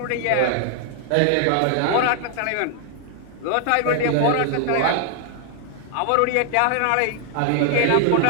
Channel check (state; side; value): different; both; correlation 0.00